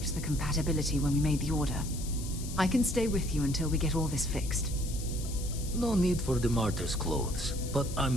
the compatibility when we made the order. I can stay with you until we get all this fixed. No need for the martyr's clothes, but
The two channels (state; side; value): noise; left; hiss, 12 dB below the sound